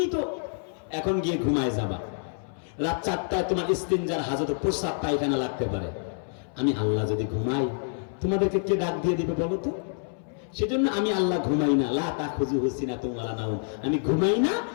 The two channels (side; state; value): right; silent; 60 dB below the other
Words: তো এখন গিয়ে ঘুমায় যাবা। রাত 4টায় তোমার ইস্তিনজার হাজত, প্রস্রাব পায়খানা লাগতে পারে। আমি আল্লাহ যদি ঘুমাই, তোমাদেরকে কে ডাক দিয়ে দিবে বলো তো? সেজন্য আমি আল্লাহ ঘুমাই না, লা তাখুযুহু সিনাতুন ওয়ালা নাওম, আমি ঘুমাই না,